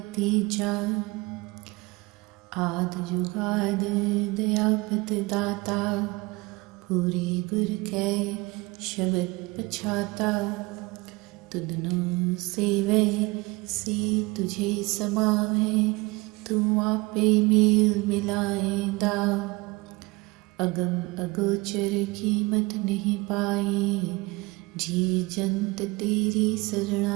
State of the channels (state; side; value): quieter; left; 24.1 dB